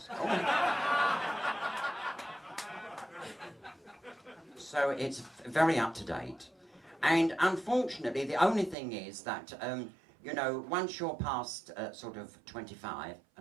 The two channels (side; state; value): left; drops out; at 8.8 s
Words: Oh. So it's very up to date. And unfortunately, the only thing is that, you know, once you're past sort of 25